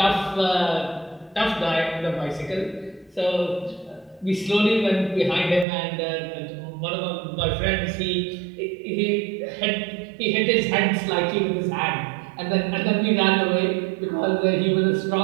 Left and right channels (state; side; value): drops out; left; at 5.7 s